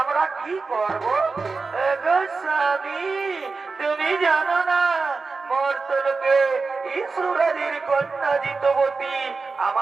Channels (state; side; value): quieter; left; 4.3 dB